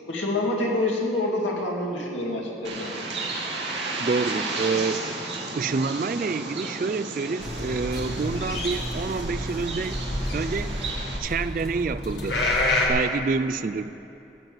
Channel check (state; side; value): normal; both; correlation 0.41